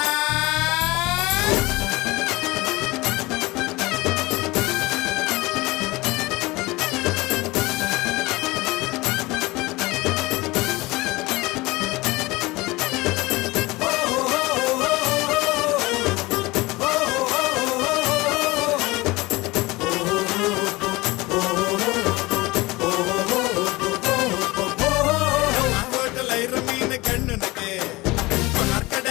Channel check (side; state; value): right; quieter; 21.5 dB